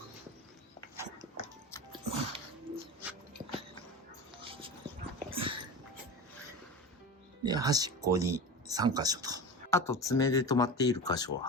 で、端っこに3箇所と。あと爪で止まっている箇所を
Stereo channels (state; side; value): normal; both; correlation 0.28